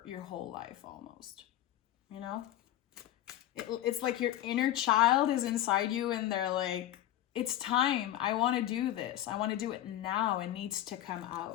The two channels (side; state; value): right; quieter; 13.0 dB